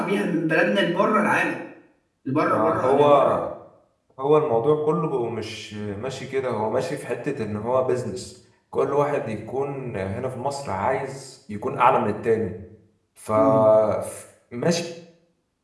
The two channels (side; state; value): both; identical; correlation 1.00